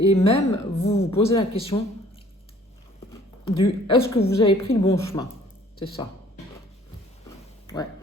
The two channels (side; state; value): both; normal; correlation 0.56